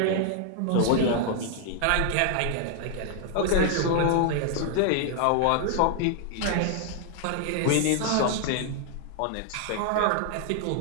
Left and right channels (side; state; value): both; different; correlation 0.00